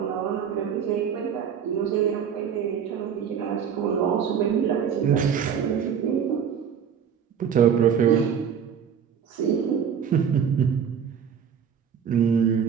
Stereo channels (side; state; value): left; quieter; 7.8 dB